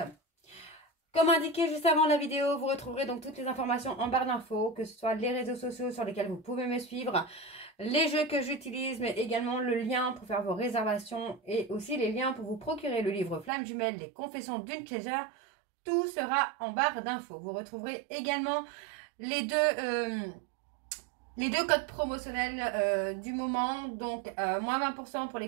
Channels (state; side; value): drops out; left; at 13.5 s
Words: Comme indiqué juste avant la vidéo, vous retrouverez donc toutes les informations en barre d'infos, que ce soit les réseaux sociaux sur lesquels vous pouvez me suivre, les jeux que j'utilise, mais également le lien pour faire vos réservations et aussi les liens pour vous procurer le livre Flamme Jumelle, les confessions d'une chaser. Tout sera en barre d'infos. Vous retrouverez également les deux codes promotionnels du moment. Donc, moins 20% pour